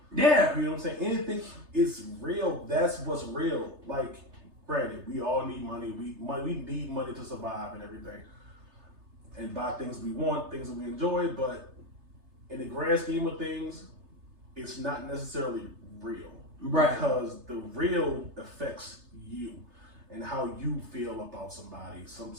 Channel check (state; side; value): late; left; 3.3 ms